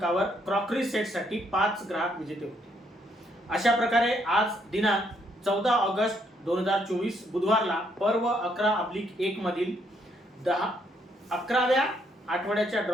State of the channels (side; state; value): both; normal; correlation 0.72